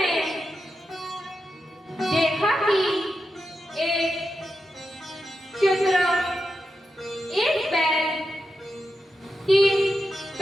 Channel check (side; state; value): both; normal; correlation 0.88